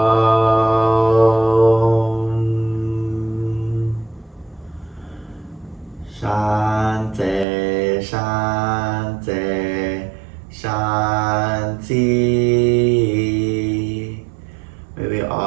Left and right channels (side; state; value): left; drops out; at 7.5 s